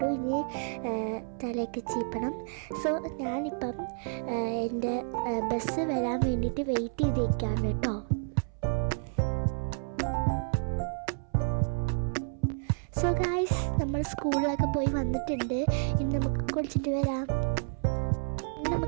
ഇനി തലയൊക്കെ ചീപ്പണം. സോ ഞാനിപ്പം എൻ്റെ ബസ് വരാൻ വേണ്ടിയിട്ട് വെയിറ്റ് ചെയ്തിരിക്കുകയാണ് കേട്ടോ. സോ ഗൈസ്, നമ്മൾ സ്കൂളിലൊക്കെ പോയി വന്നിട്ടുണ്ട്. ഇനി നമുക്ക് കുളിച്ചിട്ട് വരാം.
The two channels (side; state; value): left; silent; 58 dB below the other